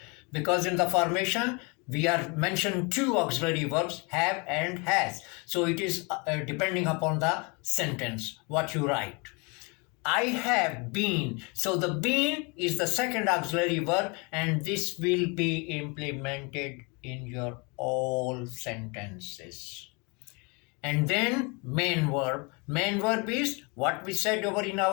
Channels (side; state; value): right; quieter; 30.7 dB